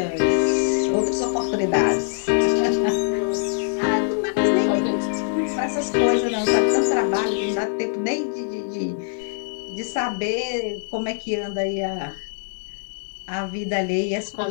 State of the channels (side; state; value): right; silent; 55 dB below the other